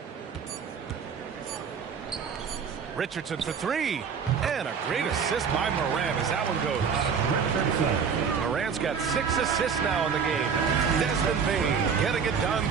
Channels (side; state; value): left; quieter; 6.4 dB